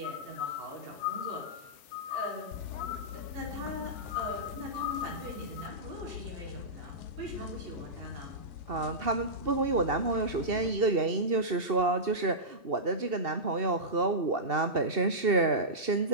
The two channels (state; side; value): late; left; 2.7 ms